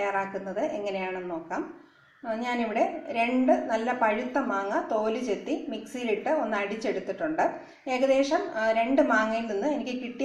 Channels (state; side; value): identical; both; correlation 1.00